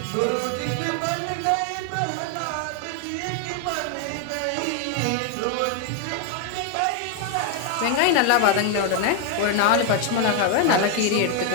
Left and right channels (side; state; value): both; different; correlation 0.01